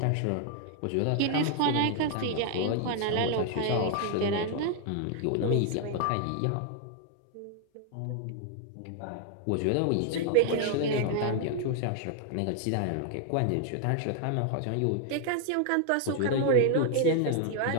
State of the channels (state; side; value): different; both; correlation 0.00